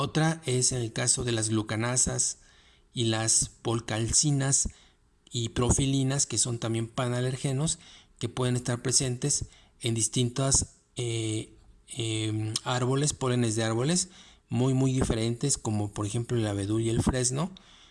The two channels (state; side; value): identical; both; correlation 1.00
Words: es en el caso de las glucanasas y las polcalcinas y profilinas, que son también panalergenos, que pueden estar presentes en distintos árboles, pólenes de árboles muy diferentes, como por ejemplo el abedul y el fresno,